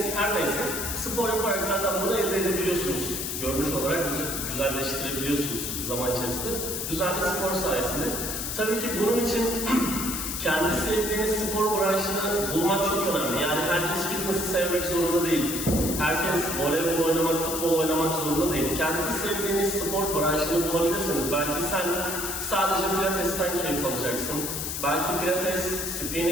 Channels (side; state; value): left; noise; hiss, 3 dB below the sound